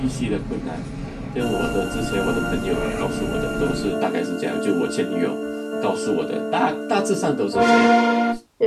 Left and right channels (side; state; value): both; identical; correlation 1.00